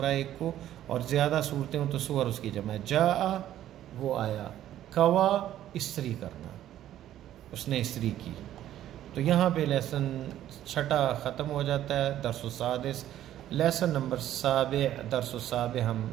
ایک کو، اور زیادہ صورتیں ہوں تو سور اس کی جمع ہے. جاء وہ آیا، کوا استری کرنا، اس نے استری کی. تو یہاں پہ لیسن 6 ختم ہو جاتا ہے. درس السادس، لیسن نمبر 7 درس السابع ہم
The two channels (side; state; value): left; quieter; 12.3 dB